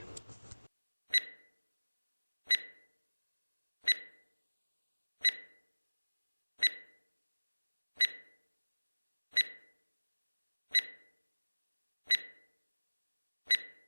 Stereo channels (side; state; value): both; inverted; correlation -1.00